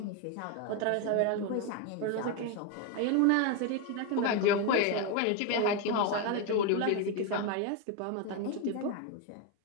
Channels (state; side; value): different; both; correlation 0.02